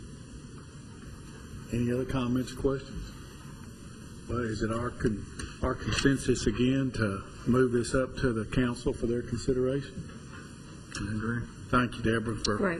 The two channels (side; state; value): both; identical; correlation 1.00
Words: Any other comments or questions? Well, is it our consensus again to move this up to the council for their consideration? I agree. Thank you, Deborah, for